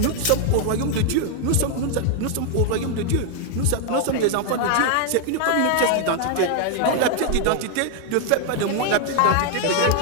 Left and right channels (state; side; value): different; both; correlation 0.00